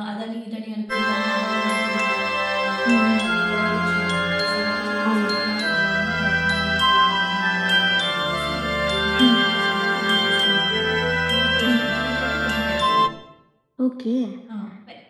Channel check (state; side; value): identical; both; correlation 1.00